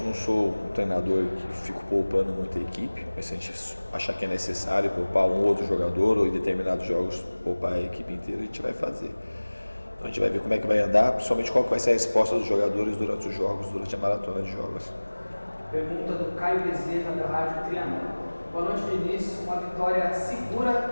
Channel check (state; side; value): inverted; both; correlation -1.00